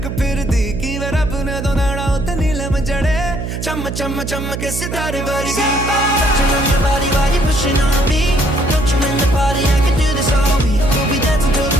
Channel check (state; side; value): noise; right; hum, 5 dB below the sound